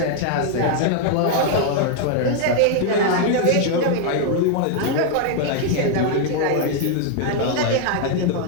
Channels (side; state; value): both; different; correlation 0.00